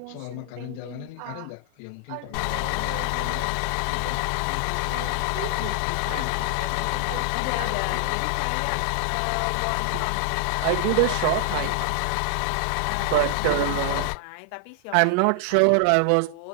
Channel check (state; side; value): different; both; correlation 0.00